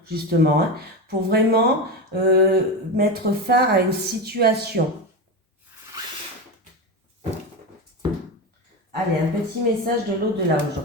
justement, hein, pour vraiment mettre fin à une situation. Allez, un petit message de l'au-delà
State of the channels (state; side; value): normal; both; correlation 0.18